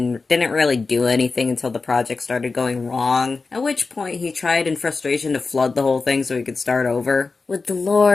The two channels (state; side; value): quieter; right; 4.1 dB